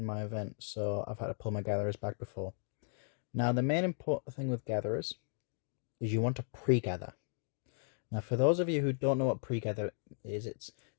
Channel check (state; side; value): silent; right; digital silence